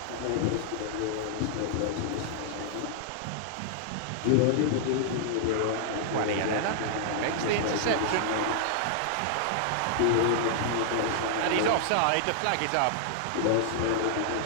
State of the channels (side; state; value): both; different; correlation -0.01